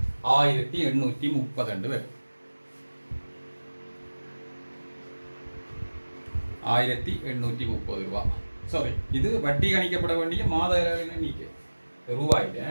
1830 வரும். 1830 ரூபாய். சாரி, இது வட்டி கணிக்கப்பட வேண்டிய மாத எண்ணிக்கை. ரூபாயில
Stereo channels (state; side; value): inverted; both; correlation -1.00